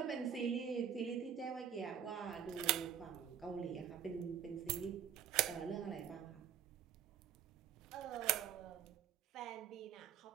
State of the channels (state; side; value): quieter; left; 8.9 dB